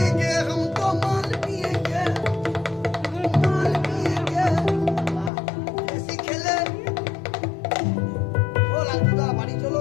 হাম তো মাল পিয়েগে, মাল পিয়েগে। বেশি খেলে ও লালটুদা বাড়ি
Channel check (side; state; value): right; drops out; at 5.3 s